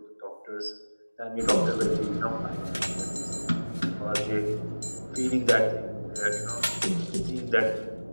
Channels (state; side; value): inverted; both; correlation -1.00